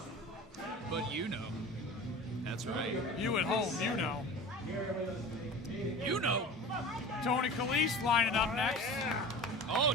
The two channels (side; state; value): both; normal; correlation 0.36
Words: But you know. That's right. You at home, you know. You know. Tony Calise lining up next. Oh,